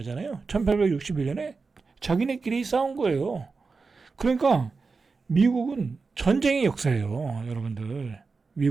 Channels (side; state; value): left; quieter; 4.4 dB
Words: 1861년에 자기네끼리 싸운 거예요. 그러니까 미국은 전쟁의 역사예요, 여러분들.